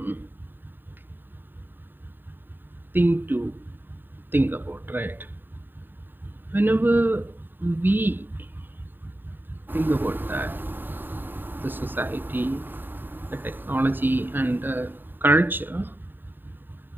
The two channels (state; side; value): late; left; 0.093 ms